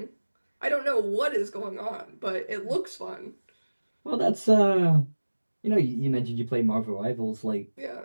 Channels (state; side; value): inverted; both; correlation -1.00